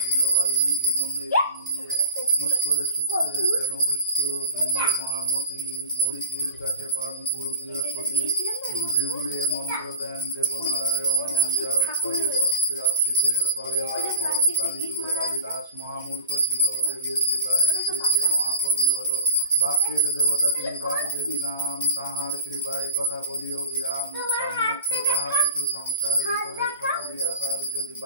দিল বাল্মীকি মন্দিরে পুষ্করে সূত্রে যেন বৃত্ত বৃন্দ মহামতি মরিচির কাছে পান গুরু বৃহস্পতি ভৃগুরে মন্ত্র দেন দেবনারায়ণ জড়ৎকারী বস্ত্রে আশ্রিতের করে অর্পণ কালীযুগে কালিদাস মহামূর্খ ছিল দেবীর কৃপায় সে যে মহাকবি হল বাক্যের দেবতা তিনি বাগদেবী নাম তাহার কৃপায় কথা বলিও বিরাম মুখ্য যাহা কিছু সংসার ভিতরে সকলই আসার যদি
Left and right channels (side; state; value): both; inverted; correlation -0.37